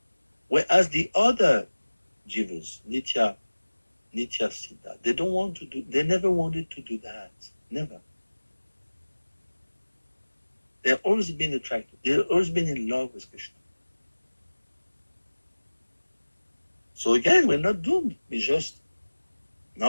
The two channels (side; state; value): both; inverted; correlation -1.00